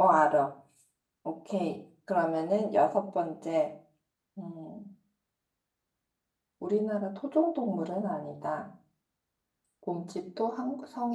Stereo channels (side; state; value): both; identical; correlation 1.00